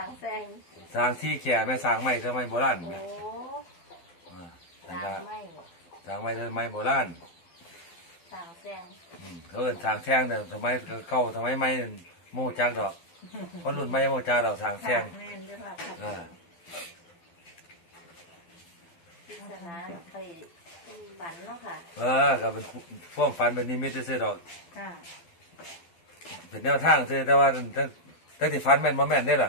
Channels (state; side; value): late; right; 12 ms